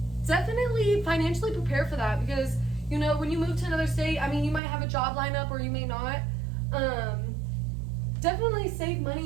Definitely financially prepare for that, because you know, when you move to another state, I mean, you might have a job lineup or you may not. Definitely save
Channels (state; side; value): drops out; left; at 4.6 s